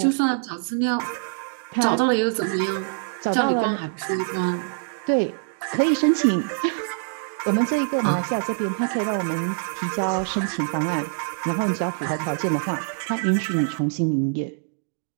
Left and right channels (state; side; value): silent; left; digital silence